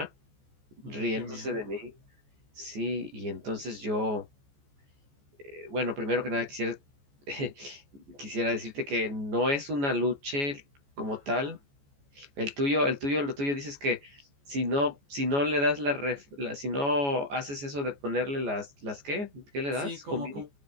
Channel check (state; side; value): late; left; 14 ms